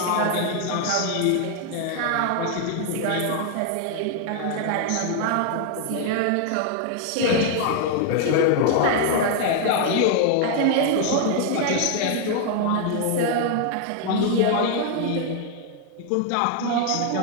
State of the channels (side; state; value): both; different; correlation 0.00